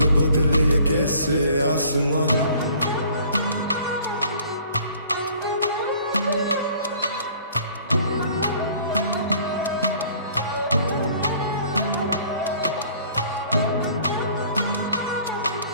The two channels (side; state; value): both; inverted; correlation -0.53